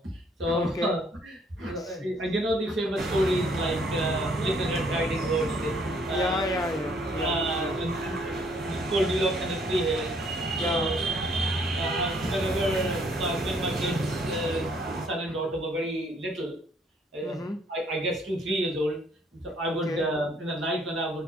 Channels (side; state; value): both; normal; correlation 0.64